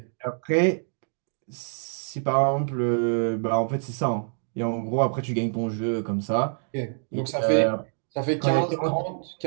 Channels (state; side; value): silent; left; digital silence